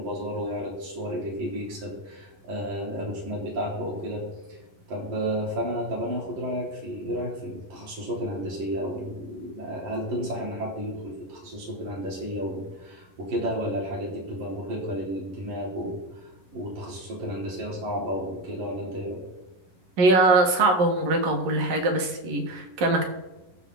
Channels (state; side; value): late; left; 11 ms